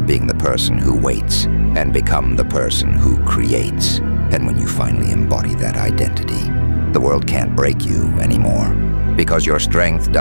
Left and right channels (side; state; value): both; inverted; correlation -1.00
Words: being the person who waits and become the person who creates. And when you finally embody that identity, the world can't break you anymore. Because your strength